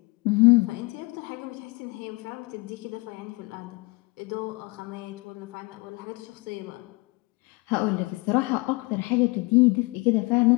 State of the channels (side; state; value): right; quieter; 26.4 dB